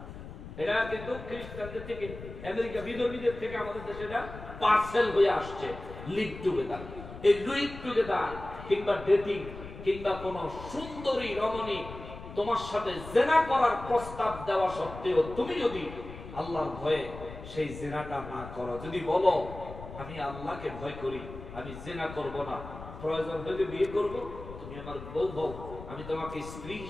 এটা কিন্তু খ্রিস্টানদের থেকে আমেরিকা বিধর্মীদের থেকে আমাদের দেশে এটা পার্সেল হয়ে আসছে লিভ টুগেদার। এই লিভ টুগেদার কিংবা ডেটিং কিংবা কোন সুন্দরী রমণী তোমার সাথে জিনা করার প্রস্তাব দেওয়া সত্ত্বেও তুমি যদি আল্লাহর ভয়ে সেই জিনাটা না করো, যদি বলো আমি আল্লাহকে ভয় করি, আমি জিনা করব না, প্রয়োজন হলে বিয়ে করব, তুমি আমার বউ হও, আমি তোমাকে স্ত্রী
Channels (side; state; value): left; noise; rumble, 12 dB below the sound